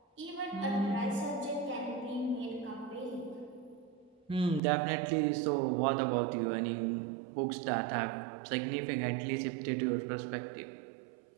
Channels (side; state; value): left; drops out; at 4.6 s